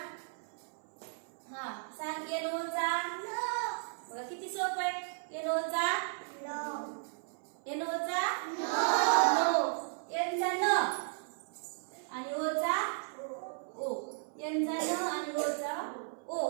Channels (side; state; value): left; silent; 54 dB below the other